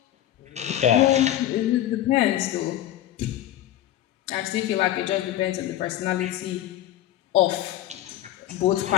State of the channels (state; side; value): quieter; right; 12.9 dB